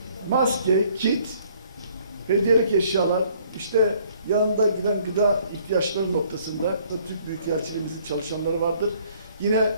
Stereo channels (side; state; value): both; inverted; correlation -0.61